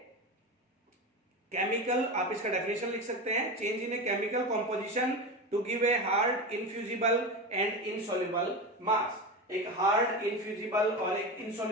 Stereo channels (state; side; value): normal; both; correlation 0.22